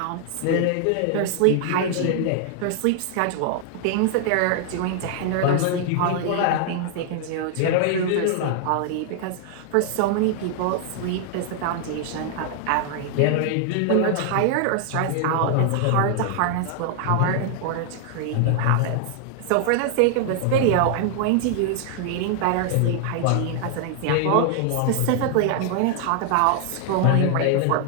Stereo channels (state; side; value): different; both; correlation 0.00